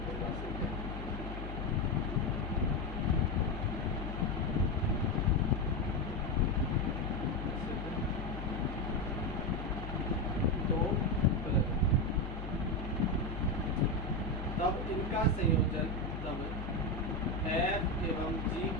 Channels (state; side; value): noise; left; hum, 7 dB below the sound